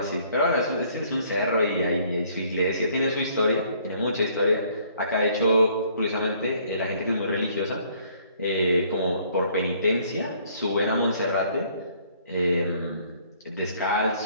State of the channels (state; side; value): inverted; both; correlation -0.61